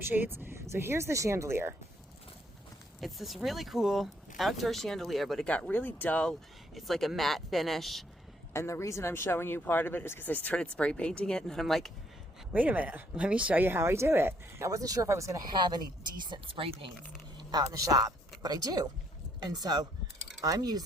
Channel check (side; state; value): both; normal; correlation 0.69